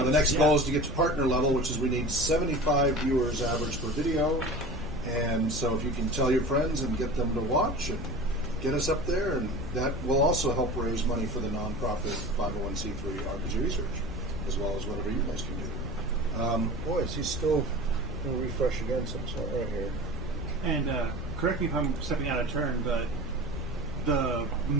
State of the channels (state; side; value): normal; both; correlation 0.36